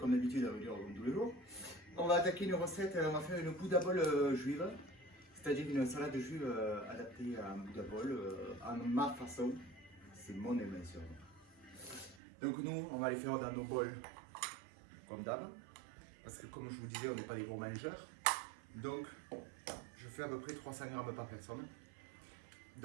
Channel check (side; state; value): left; drops out; at 12.2 s